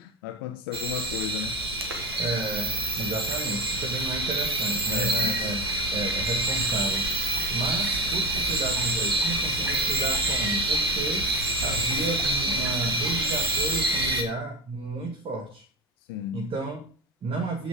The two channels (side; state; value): both; normal; correlation 0.22